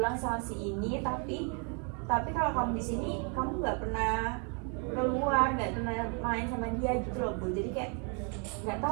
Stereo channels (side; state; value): left; quieter; 37.5 dB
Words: sama si ini, tapi kalau kamu di sini kamu nggak pernah keluar, nggak pernah main sama dia gitu loh Bu. Jadi kayak nggak